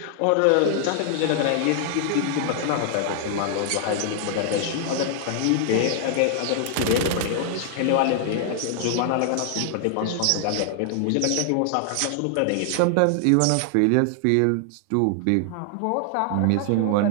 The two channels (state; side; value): different; both; correlation 0.00